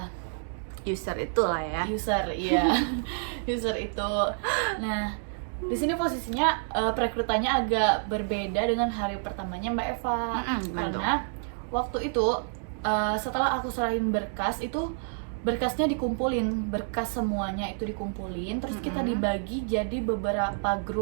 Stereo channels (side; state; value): left; silent; digital silence